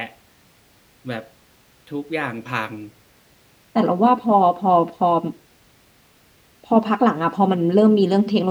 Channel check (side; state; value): both; identical; correlation 1.00